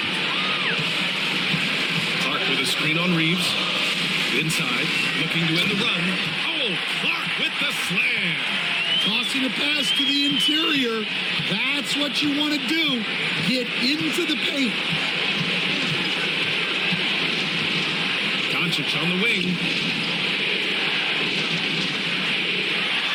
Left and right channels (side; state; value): both; identical; correlation 1.00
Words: Clark with a screen on Reeves. Inside, looking to end the run. Oh, Clark with the slam. Tossing a pass to the interior. That's what you want to do. Get into the paint. Doncic on the wing.